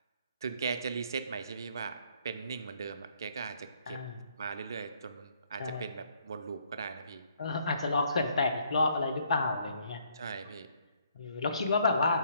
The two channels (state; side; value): inverted; both; correlation -0.67